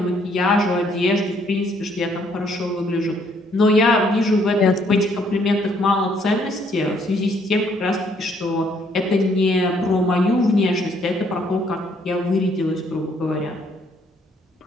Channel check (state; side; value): normal; both; correlation 0.67